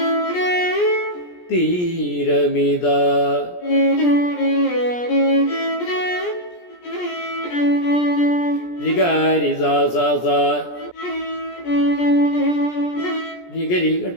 തീരമിത രിഗാരി സാ സാ സാ രിഗരി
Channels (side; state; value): right; late; 17 ms